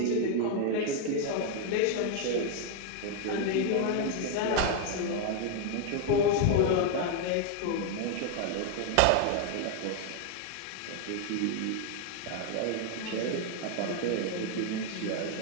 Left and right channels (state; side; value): different; both; correlation 0.01